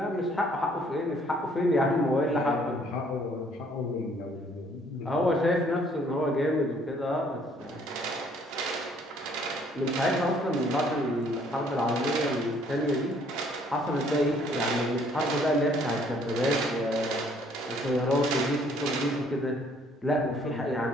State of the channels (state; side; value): normal; both; correlation 0.62